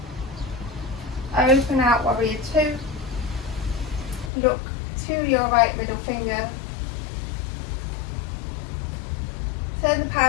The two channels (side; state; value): right; drops out; at 4.3 s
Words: Open out warrior 2. Look to your right middle finger. Turn the